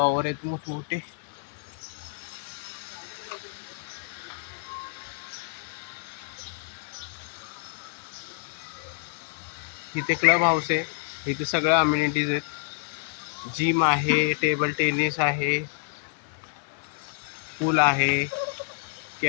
आहेत मोठमोठे. इथे क्लब हाऊस आहे, इथे सगळ्या अम्युनिटीज आहेत. जिम आहे, टेबल टेनिस आहे, पूल आहे,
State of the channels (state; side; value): silent; right; 59 dB below the other